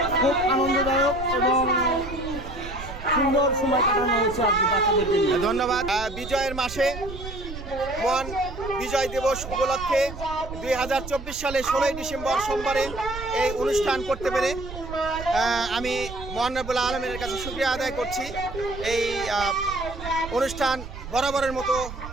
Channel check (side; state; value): right; noise; rumble, 11 dB below the sound